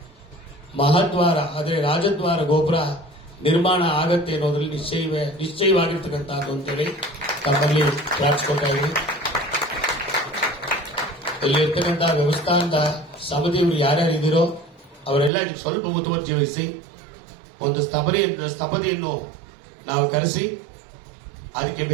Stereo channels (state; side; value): drops out; left; at 15.3 s